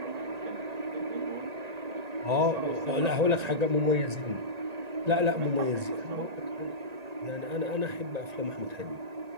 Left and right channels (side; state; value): left; late; 1.9 ms